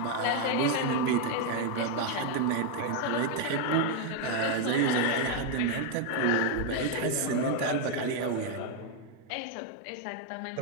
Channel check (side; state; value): both; different; correlation 0.01